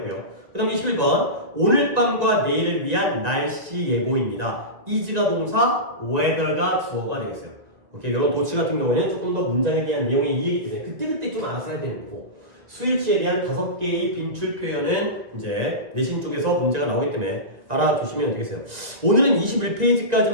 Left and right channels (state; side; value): late; left; 1.9 ms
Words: 그 다음 21번 오늘 밤과 내일을 위한 날씨 예보입니다. is가 동사, weather가 주어가 되겠어요. 오케이, 여러분 도치 같은 경우에는 조금 더 문장에 대한 내용의 이해이기 때문에 그때그때 좀 알아서 해야 되는 거고 스위치에 대한 5개의 빈출 표현은 이제 내신 쪽에서 문제가 나오기 때문에 알아두시면 되겠어요. 오늘은 21페이지까지만